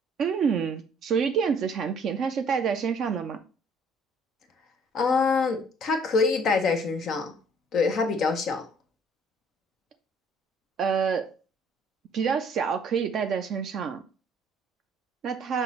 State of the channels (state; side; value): normal; both; correlation 0.58